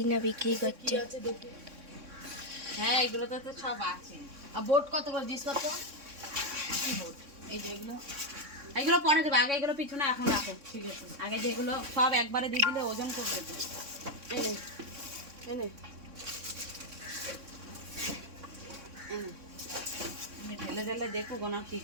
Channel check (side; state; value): left; late; 3.6 ms